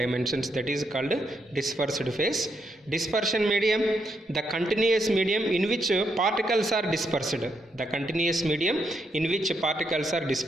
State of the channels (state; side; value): normal; both; correlation 0.78